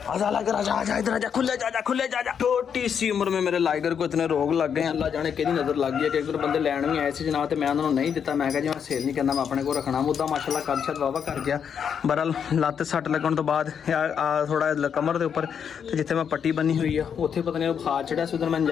आजा लाइगर आजा आजा इधर आजा, खुले जा खुले जा। छोटी सी उम्र में मेरे लाइगर को इतने रोग लग गए, अल्लाह जाने कि नज़र लग गई है कि एक बंदे लैन भी आए थे जनाब, तो मैं उन्होंने नहीं दिता। मैं जी मैं सेल नहीं करना, मैं अपने को रखना। मुद्दा माशाल्लाह कद शद वावा कर गया। बहरहाल लत्त सट लगन तो बाद थोड़ा कमर के उपर जिथे मैं पट्टी बनी हुई है उत्थे पता नहीं बुखार चढ़िया सी, उधर मैं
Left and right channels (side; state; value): right; quieter; 7.5 dB